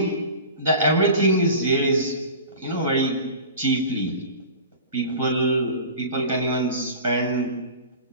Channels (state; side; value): inverted; both; correlation -0.37